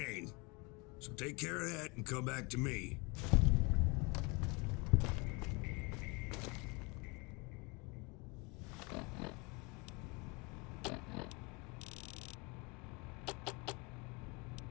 So take care of that and come back to me.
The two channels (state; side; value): quieter; right; 28.6 dB